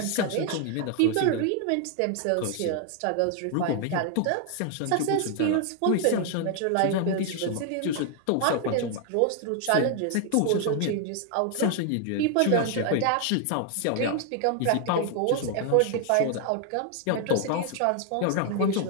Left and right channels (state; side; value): different; both; correlation 0.00